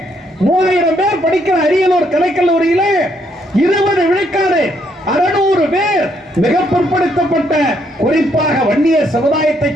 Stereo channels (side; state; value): both; normal; correlation 0.72